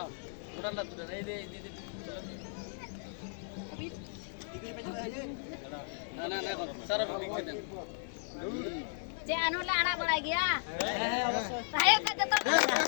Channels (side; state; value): right; silent; 54 dB below the other